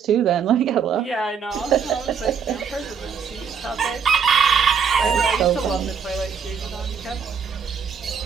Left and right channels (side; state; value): left; quieter; 6.7 dB